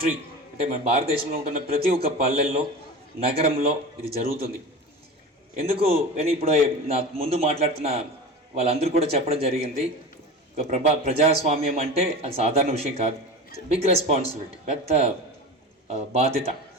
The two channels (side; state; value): both; normal; correlation 0.31